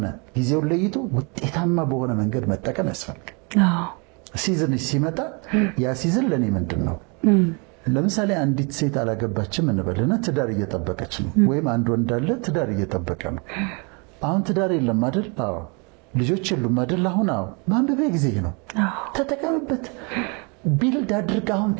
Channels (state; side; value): quieter; left; 32.7 dB